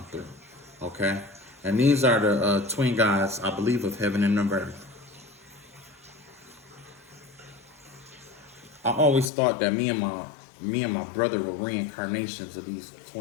through. Okay? And these are the twin gods, I believe, of heaven and of earth. I always thought that me and my brother were reincarnations of these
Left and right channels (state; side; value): drops out; right; at 9.3 s